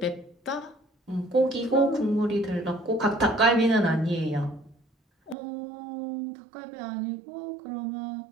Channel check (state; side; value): drops out; left; at 5.4 s